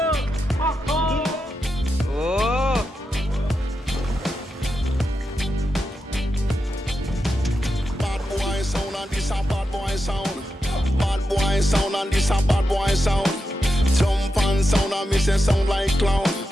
And this a bad boy sound. Jump and sound and me say sound like clown.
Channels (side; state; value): both; normal; correlation 0.88